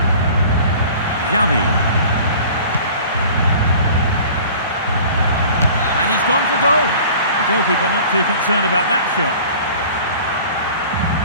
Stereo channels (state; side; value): inverted; both; correlation -0.45